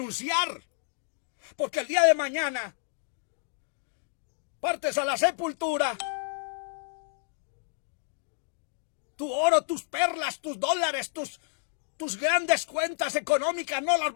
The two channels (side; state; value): right; silent; digital silence